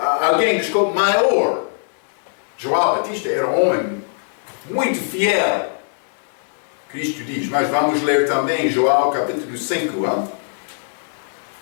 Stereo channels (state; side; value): silent; right; digital silence